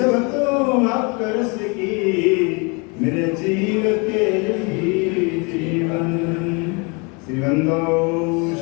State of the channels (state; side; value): quieter; right; 31.2 dB